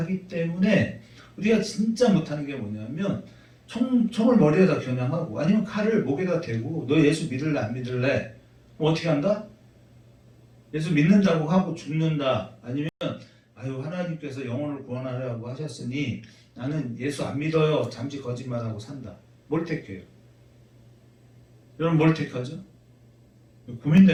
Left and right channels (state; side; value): identical; both; correlation 1.00